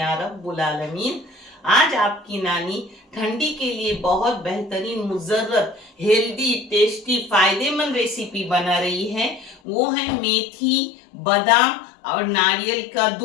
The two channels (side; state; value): right; drops out; at 9.6 s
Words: रब्बुल आलमीन। आज आपकी नानी ठंडी के लिए बहुत बेहतरीन, मुजर्रत, हेल्दी, टेस्टी, फायदेमंद रेसिपी बना रही है। वो है मेथी, बादाम और नारियल का